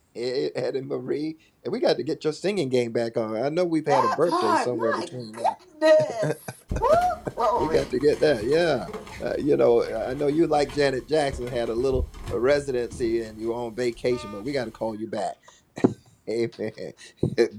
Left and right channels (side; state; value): both; identical; correlation 1.00